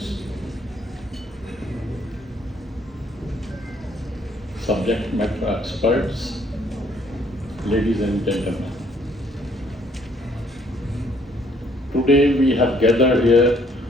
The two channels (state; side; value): normal; both; correlation 0.64